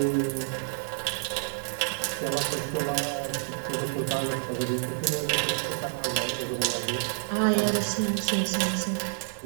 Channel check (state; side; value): silent; left; digital silence